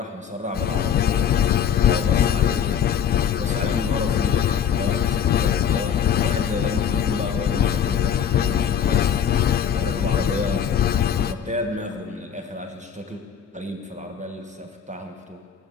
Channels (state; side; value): quieter; right; 8.1 dB